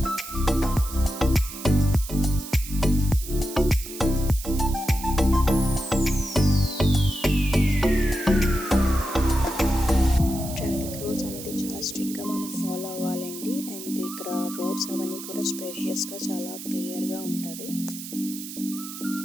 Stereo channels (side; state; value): right; noise; hiss, 11 dB below the sound